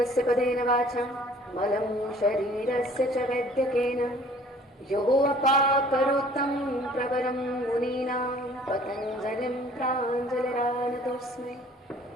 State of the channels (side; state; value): both; normal; correlation 0.53